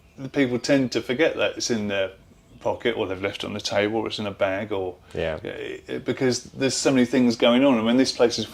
the people tend to forget that it's in their pocket, or they've left it on the table, or it's in a bag, or because there's so many things going on. And when this place is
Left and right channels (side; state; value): both; identical; correlation 1.00